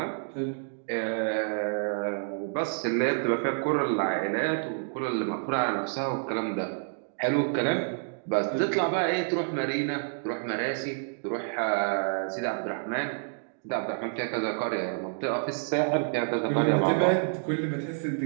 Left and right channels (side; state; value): left; silent; digital silence